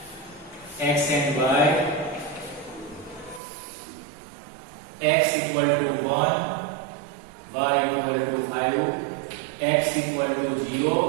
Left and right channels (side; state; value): left; drops out; at 3.4 s